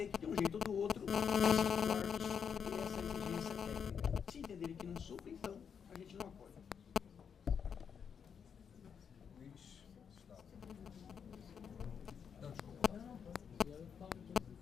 que de um jeito ou do outro essa exigência técnica. Se entenderem que não supre, então a gente não apoia.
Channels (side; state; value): right; quieter; 7.1 dB